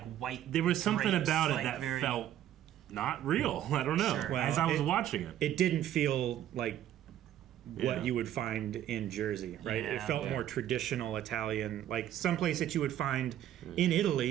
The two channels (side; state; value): left; quieter; 11.8 dB